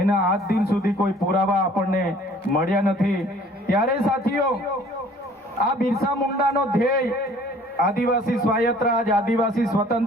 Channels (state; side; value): normal; both; correlation 0.53